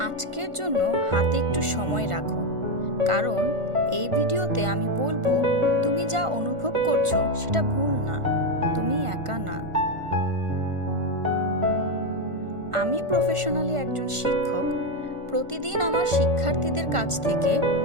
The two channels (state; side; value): late; left; 1.5 ms